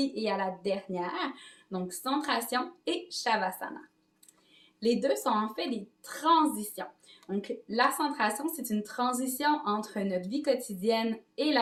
et à la dernière, donc centration et Shavasana. Les deux sont en fait des transitions. Donc la centration, c'est une transition entre notre vie quotidienne et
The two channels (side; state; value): both; identical; correlation 1.00